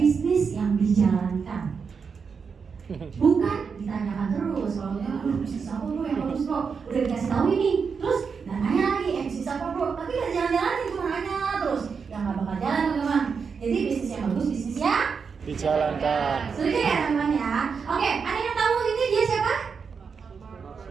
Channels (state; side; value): quieter; left; 5.8 dB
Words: yang dijalankan. Bukan ditanyakan terus. Kalau bisnis apa bro yang bagus bro? Udah dikasih tahu ini. Terus dan nanya lagi bisnis apa bro? Tapi nggak jalan-jalan cuma nanya terus. Yang nggak bakal jalan teman-teman. Jadi bisnis yang bagus bisnis yang dijalankan. Setuju ya teman-teman ya? Oke, ada yang tahu ini dia siapa?